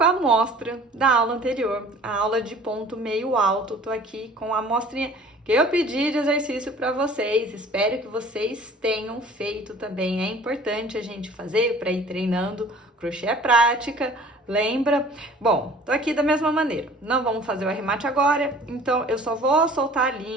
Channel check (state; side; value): normal; both; correlation 0.48